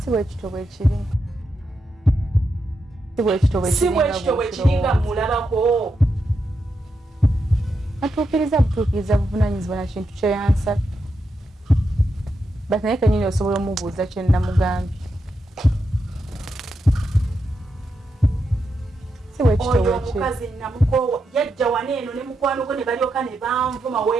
bwe kito bwe kiri. Si bwe kito bwe kiri nga mulabako. Butuukiriza buvunaanyizibwa na kintu kye yansaba. Bati naye kennyini osobola omubuuza kye namugambye. Si bwe kito bwe kiri. Oyo omukazi namukoowa yajja waneeno ne mukwano gwe ne balyoka ne banvuma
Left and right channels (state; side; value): normal; both; correlation 0.85